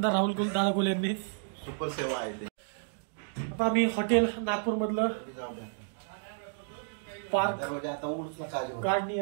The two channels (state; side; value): silent; left; digital silence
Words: राहुल दादा कोल यांनी? सुपर सेवा आहे ते। आता आम्ही हॉटेल नागपूर मधलं पार्क